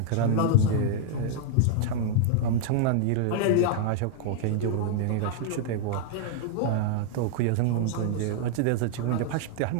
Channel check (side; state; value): both; different; correlation -0.01